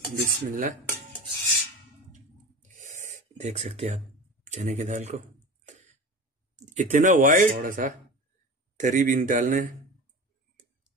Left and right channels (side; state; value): both; normal; correlation 0.32